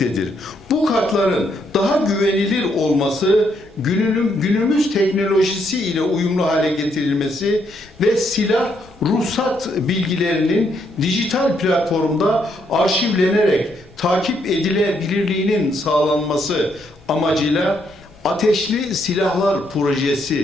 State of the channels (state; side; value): noise; left; rumble, 27 dB below the sound